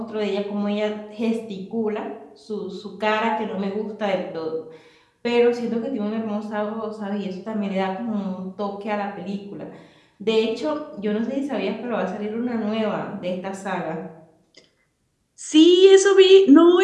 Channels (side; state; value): both; identical; correlation 1.00